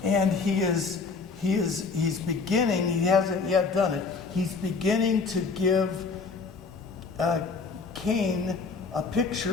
And he's beginning, he hasn't yet done it, he's beginning to give Cain a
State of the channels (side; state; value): right; quieter; 4.6 dB